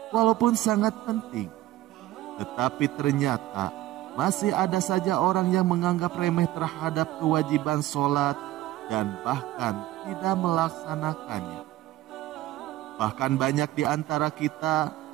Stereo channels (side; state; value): left; quieter; 15.2 dB